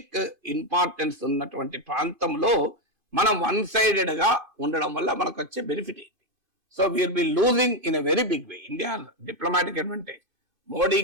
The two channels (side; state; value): left; late; 2.4 ms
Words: ఇంపార్టెన్స్ ఉన్నటువంటి ప్రాంతంలో మనం వన్ సైడెడ్ గా ఉండడం వల్ల మనకు వచ్చే బెనిఫిట్ ఏంటి? So will be losing in a very big way India diplomatic advantage.